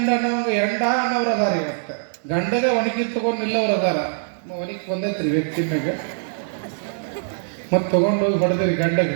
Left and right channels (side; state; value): left; silent; digital silence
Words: ಎಂಡ ಅನ್ನೋರು ಅದಾರ. ಇವತ್ತ ಗಂಡಗ ಒಣಗಿ ತಗೊಂಡು ನಿಲ್ಲವ್ರು ಅದಾರ. ಒಣಗಿ ಬಂದೈತ್ರಿ ವ್ಯಕ್ತಿ ಮ್ಯಾಗ ಮತ್ತೆ ತಗೊಂಡು ಹೋಗಿ ಹೊಡೆದ್ರಿ ಗಂಡಗೆ.